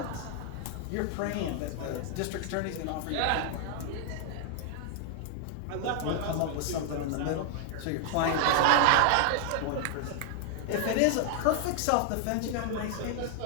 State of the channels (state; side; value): different; both; correlation 0.00